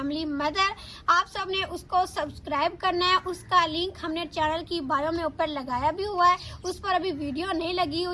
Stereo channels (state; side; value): identical; both; correlation 1.00